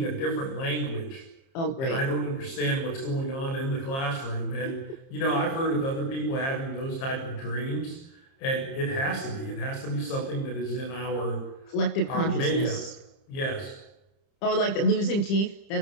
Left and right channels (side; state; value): right; late; 30 ms